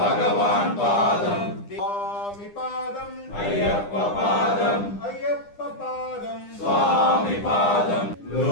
పాదం స్వామి పాదం అయ్యప్ప పాదం అయ్యప్ప పాదం స్వామి పాదం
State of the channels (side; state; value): right; late; 9.9 ms